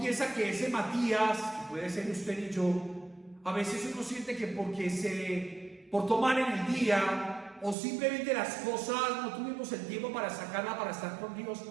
que ese Matías, que puede ser usted y yo, a veces uno siente que por tomar en el día, o simplemente las cosas, no tuvimos el tiempo para sacarla, para estar con Dios,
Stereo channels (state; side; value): drops out; left; at 7.8 s